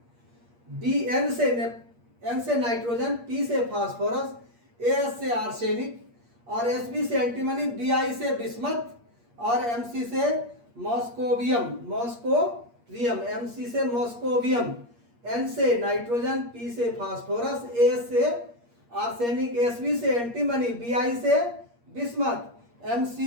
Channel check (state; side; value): late; left; 8.5 ms